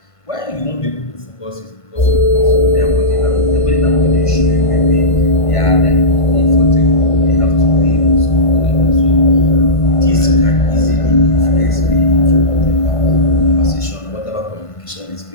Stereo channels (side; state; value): right; late; 1.5 ms